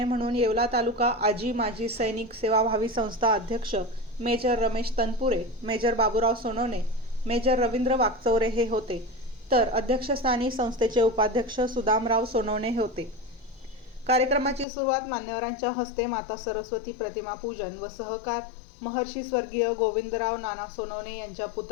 म्हणून येवला तालुका आजी माजी सैनिक सेवाभावी संस्था अध्यक्ष major Ramesh Tanpure, major Baburao Sonawane, major Ravindra Wakchaure हे होते, तर अध्यक्षस्थानी संस्थेचे उपाध्यक्ष सुदामराव सोनवणे हे होते. कार्यक्रमाची सुरुवात मान्यवरांच्या हस्ते माता सरस्वती प्रतिमा पूजन व सहकार महर्षी स्वर्गीय गोविंदराव नाना सोनवणे यांच्या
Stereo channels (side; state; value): right; drops out; at 14.7 s